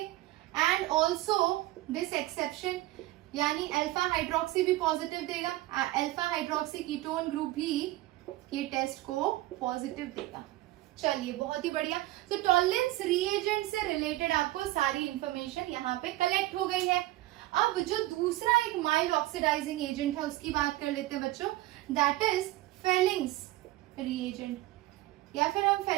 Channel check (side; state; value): left; quieter; 17.3 dB